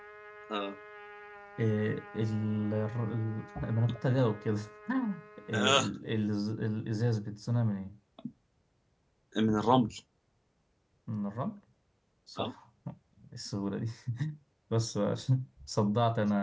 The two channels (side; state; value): both; identical; correlation 1.00